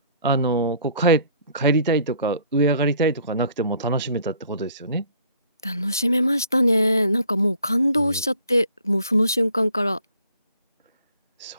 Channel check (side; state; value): both; inverted; correlation -0.57